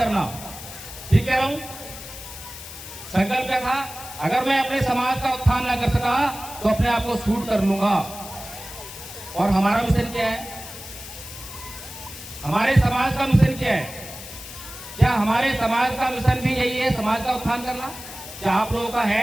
ठीक कह रहा हूं? संकल्प क्या था? अगर मैं अपने समाज का उत्थान न कर सका तो अपने आप को शूट कर लूंगा। और हमारा मिशन क्या है? हमारे समाज का मिशन क्या है? क्या हमारे समाज का मिशन भी यही है, समाज का उत्थान करना? क्या आप लोगों का है?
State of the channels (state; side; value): noise; left; hiss, 13 dB below the sound